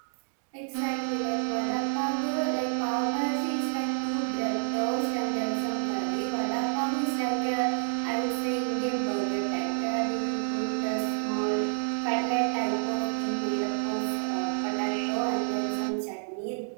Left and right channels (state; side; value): silent; left; digital silence